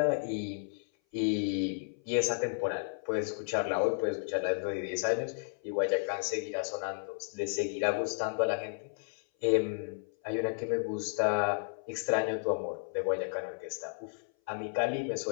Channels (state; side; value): silent; right; 56 dB below the other